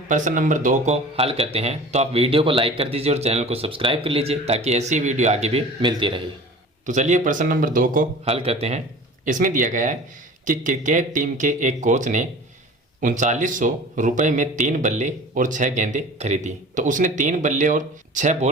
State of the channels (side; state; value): both; normal; correlation 0.40